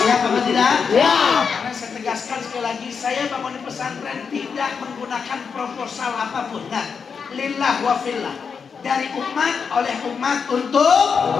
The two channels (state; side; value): quieter; right; 6.0 dB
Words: Siap apa tidak? Ya. Karena saya tegaskan sekali lagi, saya bangun pesantren tidak menggunakan proposal apapun. Nah, lillah wa fillah. Dari umat, oleh umat, untuk